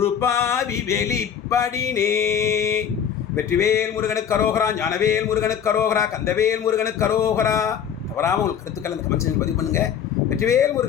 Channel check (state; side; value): quieter; right; 8.4 dB